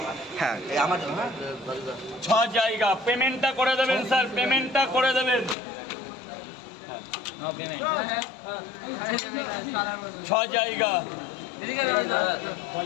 হ্যাঁ আমার 6 জায়গা। পেমেন্টটা করে দেবেন স্যার, পেমেন্টটা করে দেবেন। 6 জায়গা।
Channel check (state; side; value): drops out; right; at 5.6 s